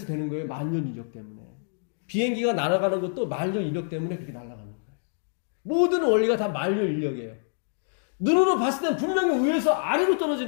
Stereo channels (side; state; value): right; silent; digital silence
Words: 되는 거예요. 만년 이력 때문에. 비행기가 날아가는 것도 만년 이력 때문에 그렇게 날아가는 거예요. 모든 원리가 다 만년 인력이에요. 눈으로 봤을 땐 분명히 위에서 아래로